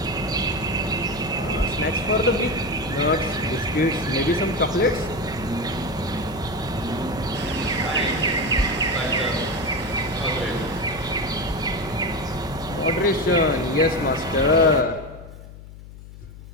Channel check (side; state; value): left; noise; hum, 16 dB below the sound